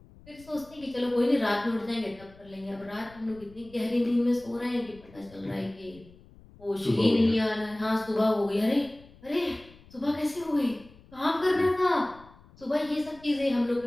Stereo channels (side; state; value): left; noise; rumble, 24 dB below the sound